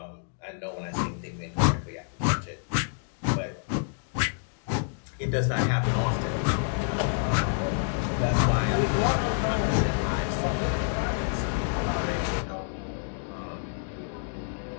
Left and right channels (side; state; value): right; silent; digital silence